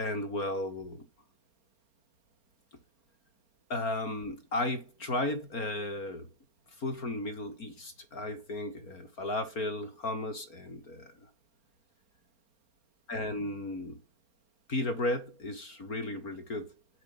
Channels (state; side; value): late; right; 4.4 ms